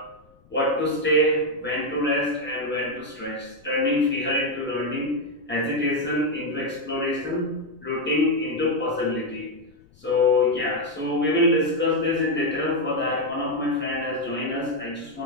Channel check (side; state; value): left; noise; rumble, 29 dB below the sound